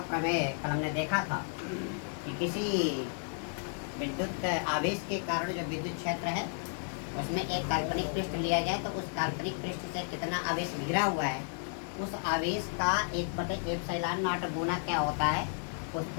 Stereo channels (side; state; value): right; silent; 56 dB below the other